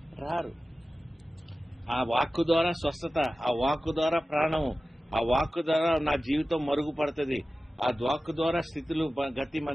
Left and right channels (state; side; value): normal; both; correlation 0.95